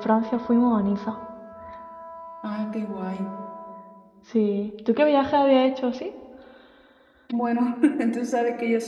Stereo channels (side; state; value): both; identical; correlation 1.00